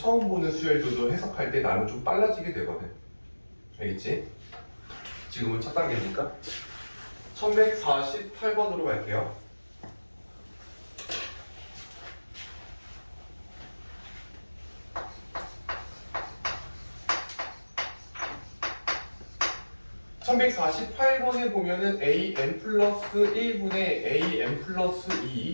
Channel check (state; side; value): inverted; both; correlation -1.00